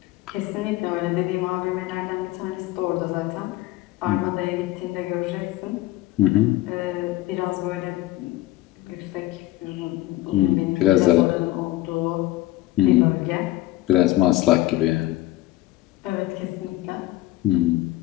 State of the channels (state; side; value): quieter; right; 16.6 dB